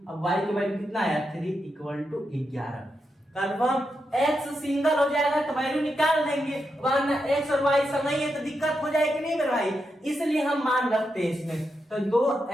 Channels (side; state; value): both; normal; correlation 0.85